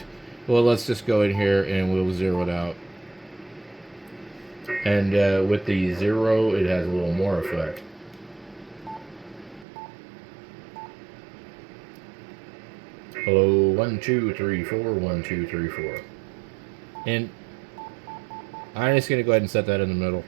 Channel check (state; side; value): drops out; left; at 9.7 s